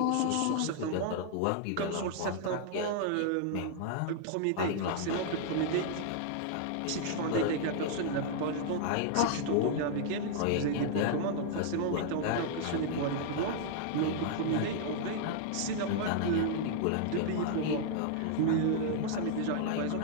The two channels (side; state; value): both; different; correlation -0.01